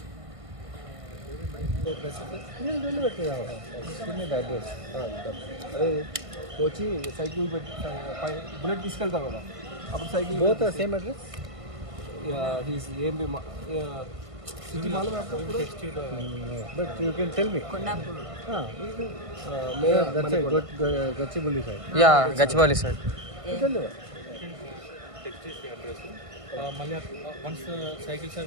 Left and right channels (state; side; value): late; left; 1.5 ms